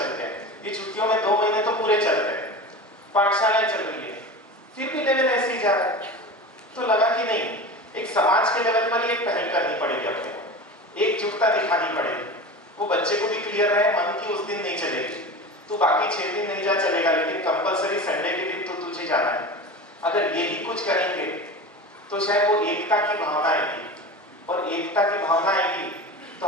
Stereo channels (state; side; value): normal; both; correlation 0.31